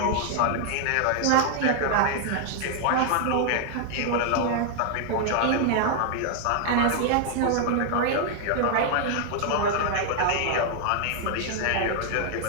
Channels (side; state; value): both; different; correlation 0.00